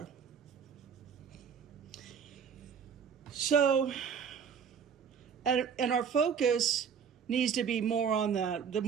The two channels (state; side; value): quieter; left; 7.0 dB